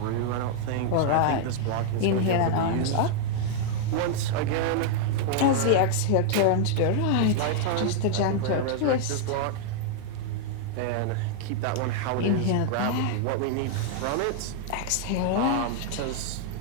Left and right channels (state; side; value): different; both; correlation 0.00